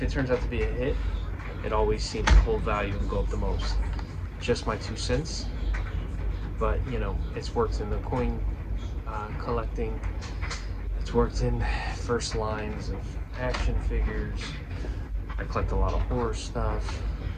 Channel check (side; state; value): both; identical; correlation 1.00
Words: it turns out to be a hit, it always seems to hold value and go up the most. Just my 2 cents. But you know, it's worked in the coin collecting. It's worked in first lines of action figures. I collect a lot of horror stuff.